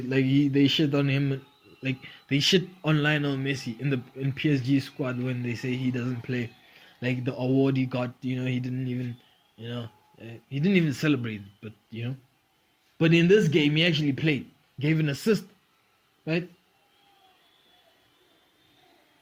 shit on him, like they shit on Lionel Messi in PSG squad when they say he doesn't play. Like the award he got, you know, he didn't even celebrate, but you know. But in this game, he actually played, gave an assist, right?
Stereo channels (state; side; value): identical; both; correlation 1.00